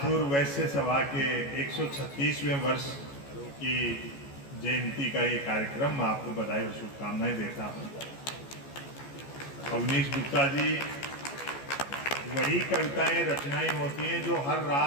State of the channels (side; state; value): right; late; 14 ms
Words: वैश्य सभा के 136वें वर्ष की जयंती का ये कार्यक्रम, मैं आपको बधाई और शुभकामनाएं देता हूँ। अवनीश गुप्ता जी, वही कविताएं रचनाएं होती हैं जो हर